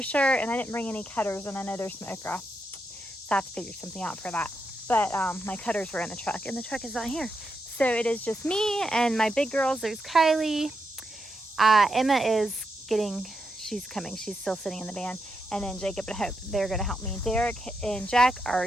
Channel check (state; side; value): normal; both; correlation 0.84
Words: sure. And I didn't bring any cutters, and I know there's some okra, so I have to figure something out for that. But my cutters were in the truck, and the truck is not here. So it is just me and my big girls. There's Kylie. Emma is she's coming. She's still sitting in the van. And then Jacob and Hope, they're going to help me. Derek and Jack